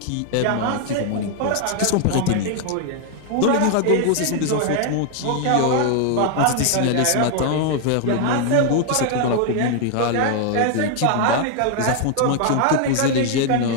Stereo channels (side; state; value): both; different; correlation 0.00